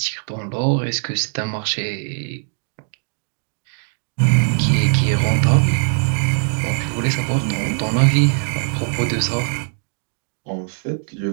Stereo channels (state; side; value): silent; left; digital silence